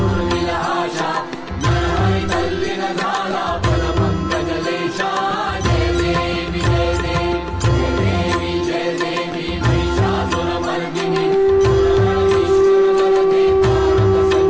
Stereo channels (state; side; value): identical; both; correlation 1.00